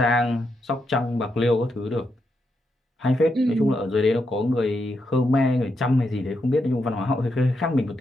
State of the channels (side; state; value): both; normal; correlation 0.82